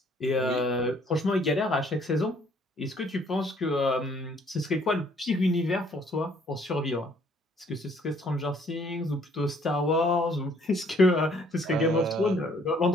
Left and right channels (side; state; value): both; normal; correlation 0.62